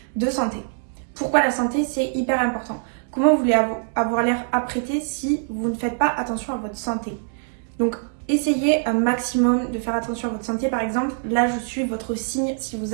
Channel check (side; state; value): left; silent; digital silence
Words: de santé. Pourquoi la santé, c'est hyper important? Comment vous voulez avoir l'air apprêté si vous ne faites pas attention à votre santé? Donc, essayez un maximum de faire attention à votre santé. Par exemple, là, je suis votre signe si vous